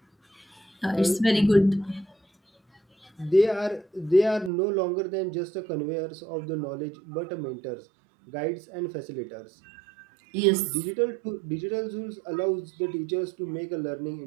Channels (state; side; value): drops out; left; at 4.5 s